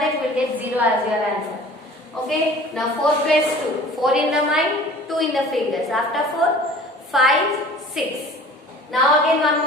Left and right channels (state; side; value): normal; both; correlation 0.45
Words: we will get 0 as your answer. Okay. Now 4 plus 2, 4 in the mind, 2 in the fingers. After 4, 5, 6. Now again one